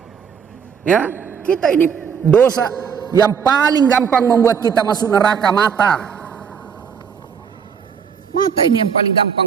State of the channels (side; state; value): left; quieter; 6.9 dB